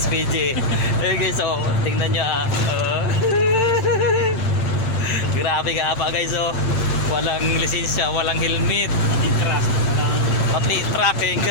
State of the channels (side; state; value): right; late; 8.9 ms